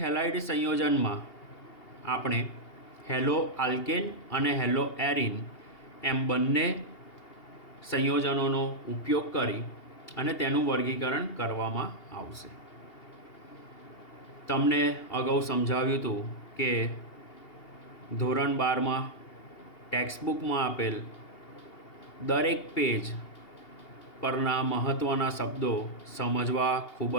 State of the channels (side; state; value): right; late; 2.8 ms